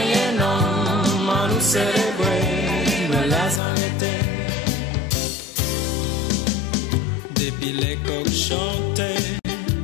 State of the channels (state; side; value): drops out; right; at 3.6 s